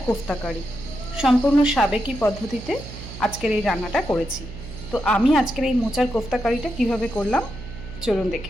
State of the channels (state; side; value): noise; right; hum, 12 dB below the sound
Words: কোফতা কারি। সম্পূর্ণ সাবেকি পদ্ধতিতে আজকের এই রান্নাটা করেছি। তো আমি আজকের এই মোচার কোফতা কারিটা কীভাবে করলাম চলুন